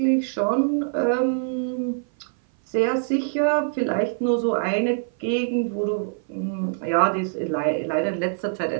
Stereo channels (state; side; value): silent; left; 56 dB below the other